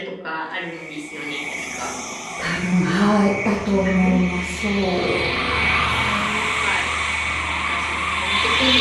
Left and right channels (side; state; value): both; identical; correlation 1.00